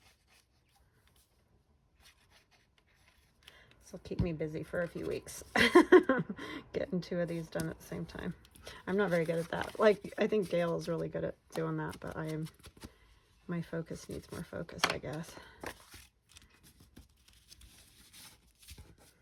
This will keep me busy for a few weeks. Getting 2 of these done at the same time. I'm not very good at that. Like, I think Gail is really good at doing that, but my focus needs more focus, I guess.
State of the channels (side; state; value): both; identical; correlation 1.00